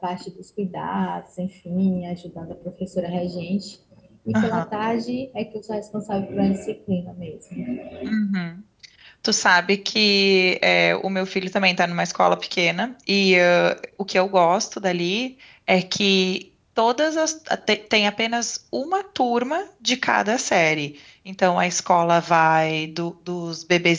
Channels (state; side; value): identical; both; correlation 1.00